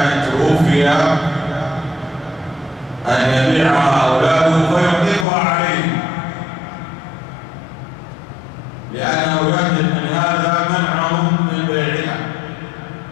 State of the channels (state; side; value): drops out; right; at 5.2 s